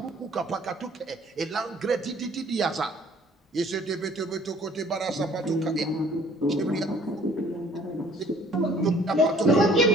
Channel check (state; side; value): normal; both; correlation 0.56